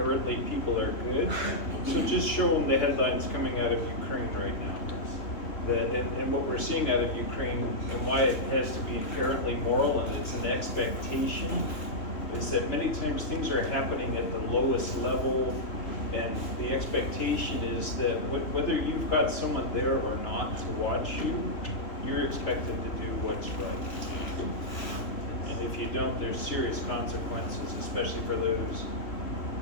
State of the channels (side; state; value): right; late; 3.3 ms